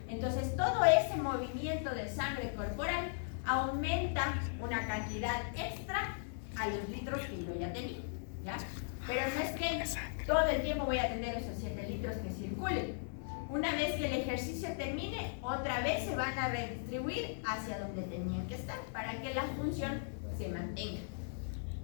Entonces, todo ese movimiento de sangre corporal aumenta una cantidad extra a los litros que yo ya tenía, ¿ya? Pero no es que todo el tiempo voy a tener esos 7 litros que circulen. Una vez que el ejercicio termine, otra vez se van a redistribuir hacia donde tenían que estar para que la función se mantenga.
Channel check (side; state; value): right; silent; 53 dB below the other